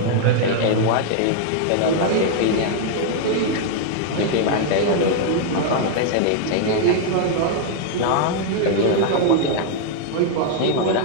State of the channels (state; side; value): different; both; correlation 0.00